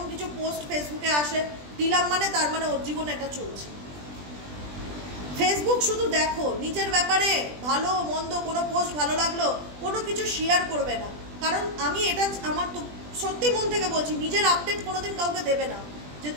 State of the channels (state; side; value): late; left; 20 ms